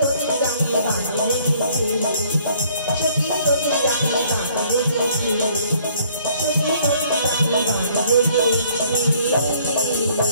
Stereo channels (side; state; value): both; inverted; correlation -0.61